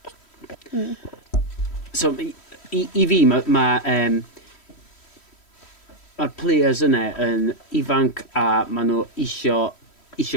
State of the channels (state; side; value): late; right; 3.1 ms